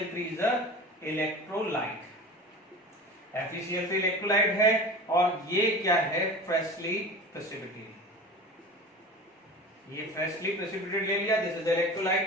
is a electrolyte, FeCl3 electrolyte है और ये क्या है, फ्रेशली प्रेसिपिटेटेड। ये फ्रेशली प्रेसिपिटेटेड ले लिया, दिस इज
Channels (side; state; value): both; normal; correlation 0.34